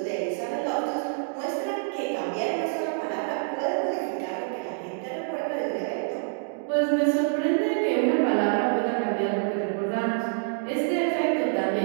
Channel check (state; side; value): silent; left; digital silence